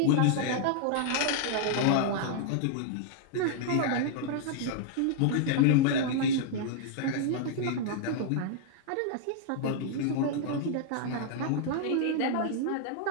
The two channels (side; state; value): both; different; correlation -0.01